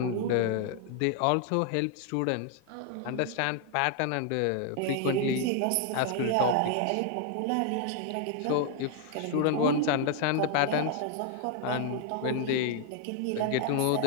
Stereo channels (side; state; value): both; different; correlation 0.00